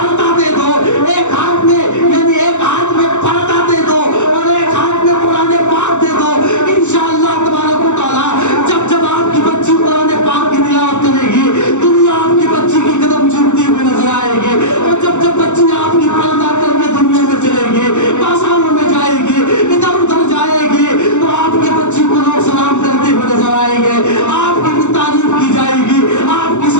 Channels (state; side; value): late; right; 0.84 ms